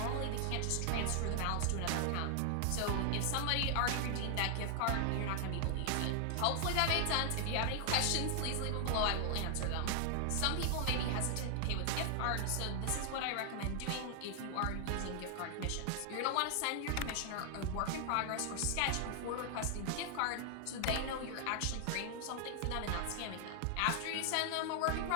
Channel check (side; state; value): both; different; correlation 0.00